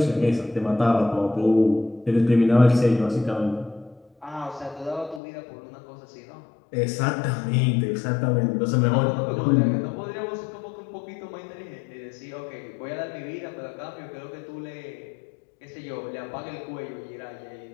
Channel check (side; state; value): right; drops out; at 5.2 s